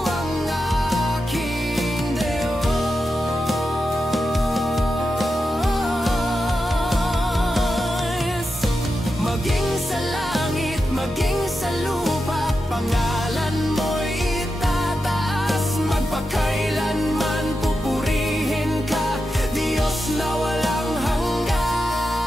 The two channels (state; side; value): normal; both; correlation 0.89